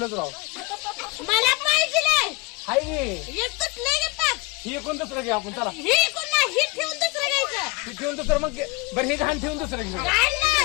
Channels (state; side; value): quieter; right; 25.5 dB